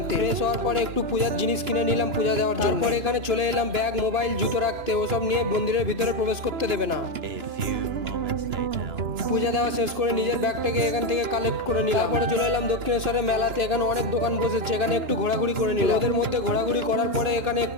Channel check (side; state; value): left; late; 2.9 ms